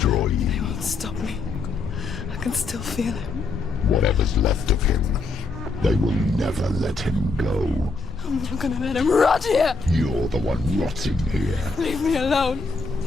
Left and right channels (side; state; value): right; quieter; 3.8 dB